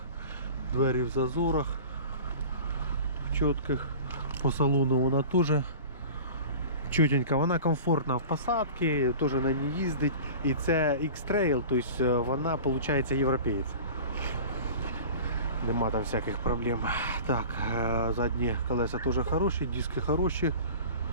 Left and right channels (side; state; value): both; inverted; correlation -0.38